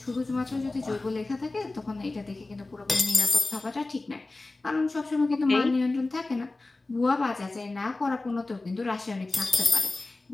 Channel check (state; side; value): quieter; right; 3.2 dB